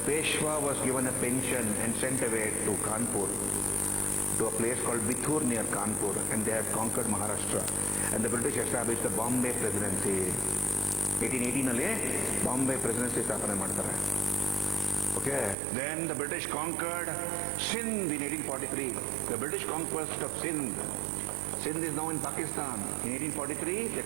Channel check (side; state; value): left; drops out; at 15.6 s